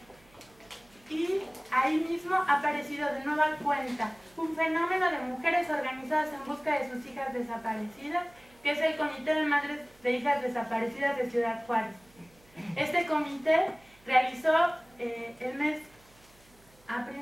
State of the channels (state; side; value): noise; right; hum, 29 dB below the sound